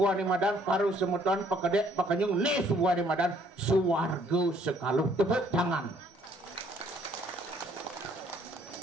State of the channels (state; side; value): normal; both; correlation 0.63